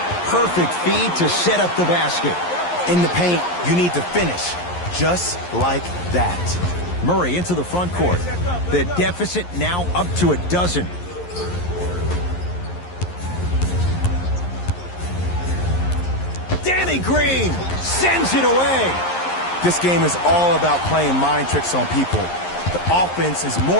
Perfect feed to set up the basket. In the paint, you need to finish just like that. Murray into the front court. The deficit now up to 12. Danny Green sends it away. This game is all about playing mind tricks on people. The offense is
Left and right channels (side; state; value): right; late; 11 ms